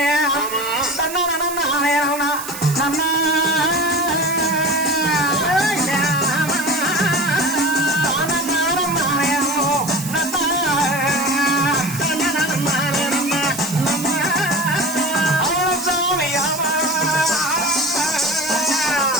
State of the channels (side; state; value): right; noise; hiss, 10 dB below the sound